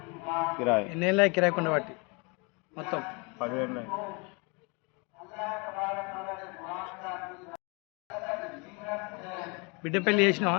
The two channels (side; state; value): right; quieter; 30.4 dB